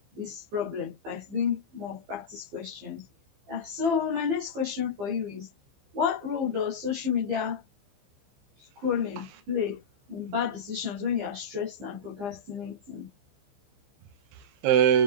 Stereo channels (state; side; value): late; left; 15 ms